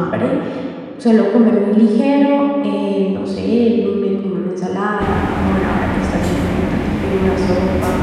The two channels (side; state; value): both; identical; correlation 1.00